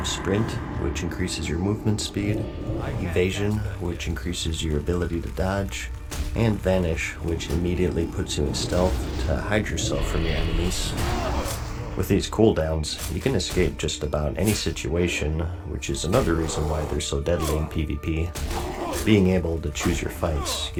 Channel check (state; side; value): identical; both; correlation 1.00